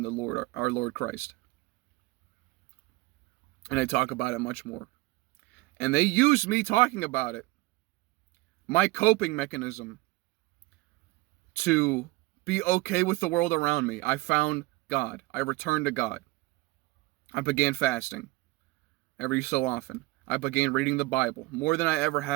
the Lord, our Lord Christ. And I talk about it much more. And they used me talking about it, my coping mechanism, to be okay with the world around me. I found God. I returned to God. I began fasting every so often. I began reading the Bible more than I ever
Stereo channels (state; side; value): quieter; left; 20.9 dB